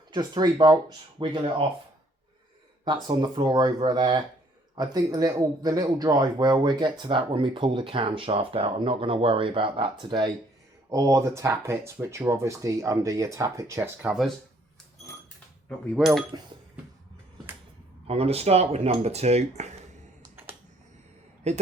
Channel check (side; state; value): both; normal; correlation 0.64